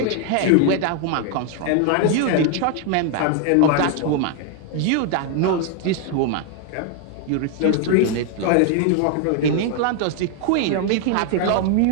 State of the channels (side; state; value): both; different; correlation 0.00